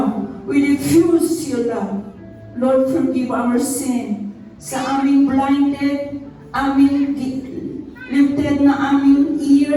We refuse your love. Lord, forgive our sin. Sa aming blinded, aming lifted na aming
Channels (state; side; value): identical; both; correlation 1.00